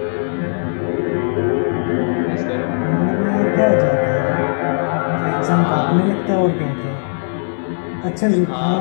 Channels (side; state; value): right; silent; digital silence